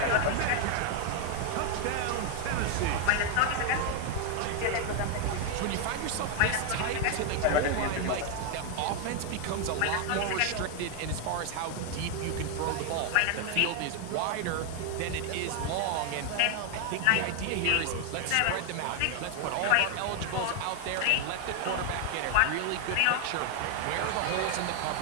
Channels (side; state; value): both; different; correlation 0.00